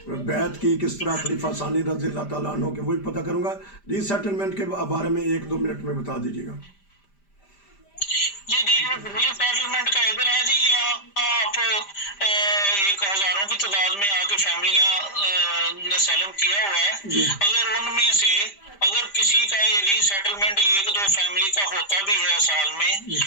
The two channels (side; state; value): right; late; 5.0 ms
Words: بیعت کی کس طرح خلیفہ ثانی رضی اللہ تعالیٰ عنہ کے، وہی پتہ کروں گا۔ ری سیٹلمنٹ کے بارے میں 1-2 منٹ میں بتا دیجیے گا۔ جی ری سیٹلمنٹ کا ادھر ہے جی، آپ ایک ہزاروں کی تعداد میں آ کے فیملیاں نے سیلم کیا ہوا ہے، اگر ان میں سے اگر کسی کا ری سیٹلمنٹ 1-2 فیملی کا ہوتا بھی ہے سال میں،